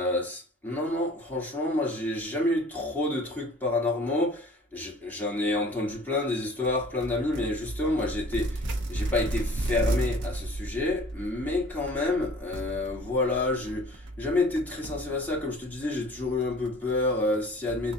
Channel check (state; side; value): normal; both; correlation 0.49